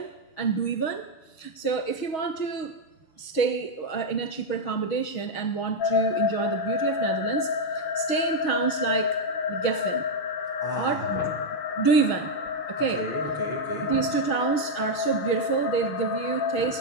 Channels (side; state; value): right; late; 6.3 ms